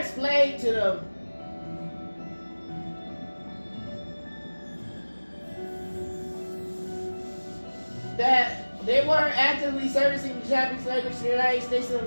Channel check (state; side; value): inverted; both; correlation -1.00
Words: to them that they weren't actively servicing the Japanese language in the United States of